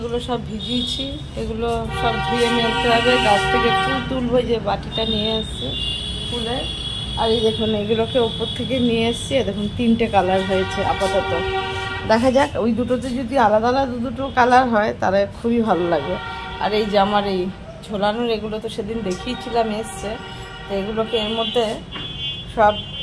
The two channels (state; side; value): identical; both; correlation 1.00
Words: সব ভিজিয়েছি, এগুলো সব ধুয়ে মেলতে হবে। গাছ থেকে ফুল তুলবো, যে বাটিটা নিয়ে এসছি ফুলের। আর এই দেখুন এগুলোকে ওপর থেকে নিয়ে এসছি, দেখুন 3টে কালার হয়েছে আপাতত। দেখা যাক, ওই দুটোতে যদি আলাদা আলাদা দুটো কালার হয় তাহলে খুবই ভালো লাগবে। আর এই যে আমার এই ঝোলানোর এগুলো তো সেদিন দেখিয়েছিলাম এসছে, তো এগুলোকে এর মধ্যে সব